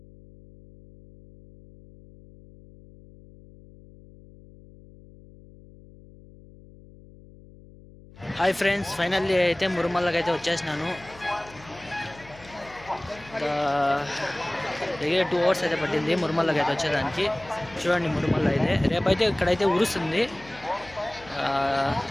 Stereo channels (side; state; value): left; noise; hum, 22 dB below the sound